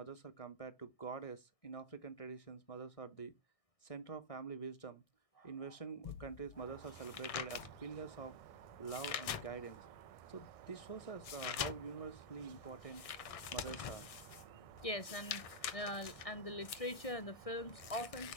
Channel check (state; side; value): late; right; 1.6 ms